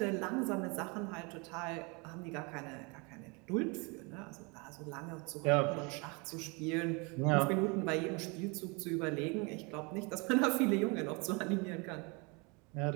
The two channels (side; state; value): left; quieter; 30.0 dB